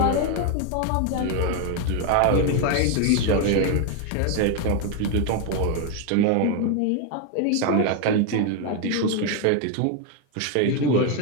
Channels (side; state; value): both; different; correlation 0.01